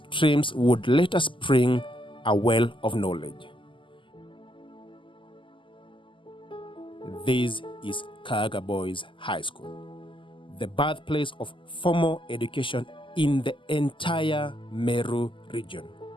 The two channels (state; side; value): late; right; 0.25 ms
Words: would later spring a well of knowledge. This is Kaaga Boys High School, the birthplace of formal education in the entire Meru region.